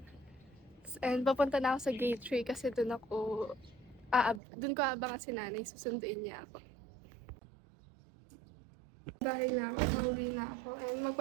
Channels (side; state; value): left; drops out; at 4.4 s